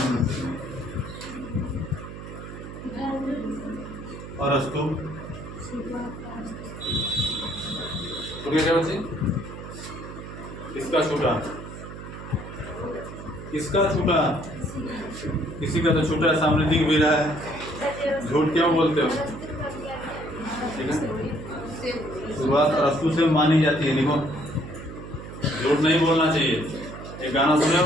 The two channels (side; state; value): right; noise; hum, 11 dB below the sound